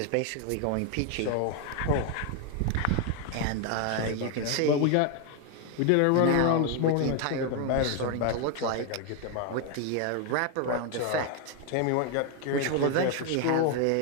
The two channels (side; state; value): both; different; correlation 0.01